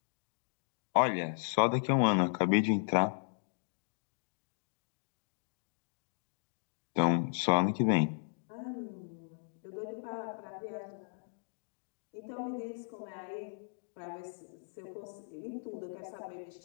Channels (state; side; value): silent; right; digital silence